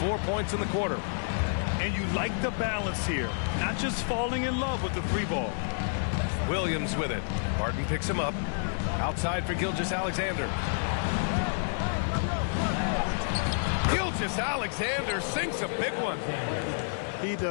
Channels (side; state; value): right; silent; 58 dB below the other